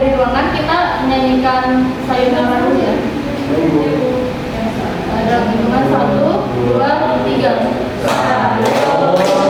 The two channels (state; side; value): identical; both; correlation 1.00